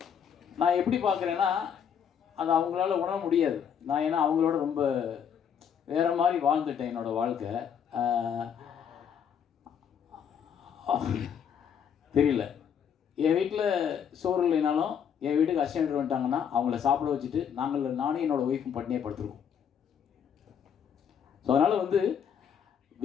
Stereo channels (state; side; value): quieter; right; 7.9 dB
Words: நான் எப்படி பார்க்குறேன்னா அது அவங்களால உணர முடியாது. நான் ஏன்னா அவங்களோட ரொம்ப வேறு மாதிரி வாழ்ந்துட்டேன் என்னோடய வாழ்க்கை. தெரியல, என் வீட்டில் சோறு இல்லைனாலும் என் வீட்டுக்கு அசிஸ்டன்ட் வந்துட்டாங்கன்னா அவங்கள சாப்பிட வச்சுட்டு நானும் என்னோடய ஒய்ஃபும் பட்டினியே படுத்துருக்கோம். ஸோ அதனால் வந்து